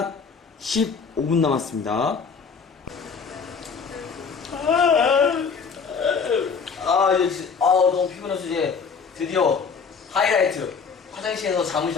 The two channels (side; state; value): right; quieter; 5.6 dB